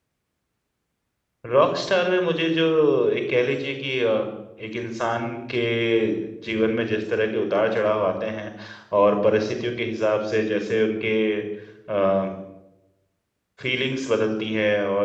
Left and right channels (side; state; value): both; identical; correlation 1.00